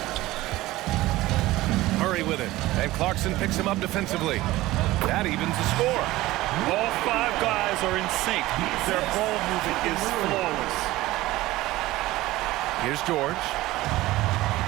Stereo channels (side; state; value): left; quieter; 17.7 dB